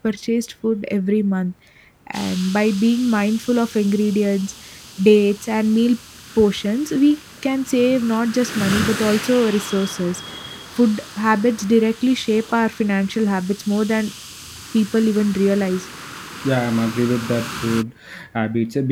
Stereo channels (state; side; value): identical; both; correlation 1.00